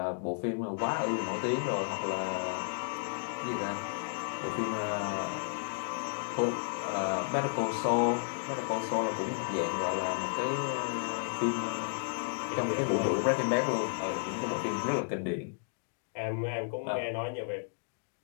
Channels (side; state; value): right; silent; digital silence